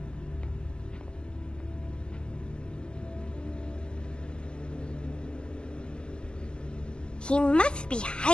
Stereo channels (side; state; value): right; late; 0.053 ms